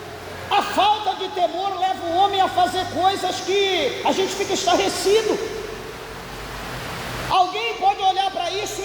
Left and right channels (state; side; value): identical; both; correlation 1.00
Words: A falta de temor leva o homem a fazer coisas que a gente fica estarrecido. Alguém pode olhar para isso